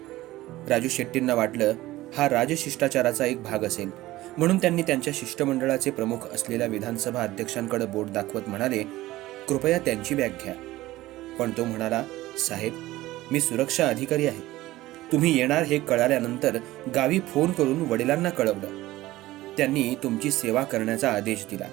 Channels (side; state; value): left; quieter; 17.1 dB